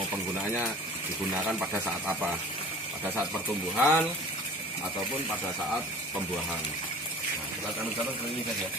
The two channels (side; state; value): both; normal; correlation 0.44